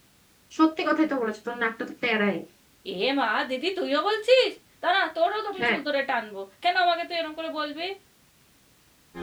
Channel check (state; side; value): identical; both; correlation 1.00